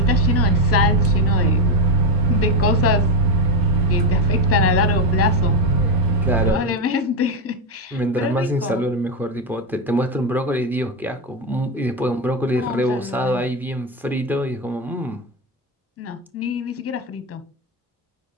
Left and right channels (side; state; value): both; normal; correlation 0.09